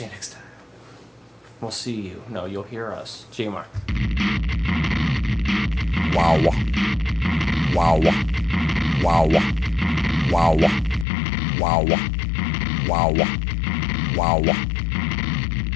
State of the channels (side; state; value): right; drops out; at 11.1 s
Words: you next time. We'll see you. No, you'll hear us. GMR. Wow. Wow. Wow. Wow. Wow. Wow. Wow.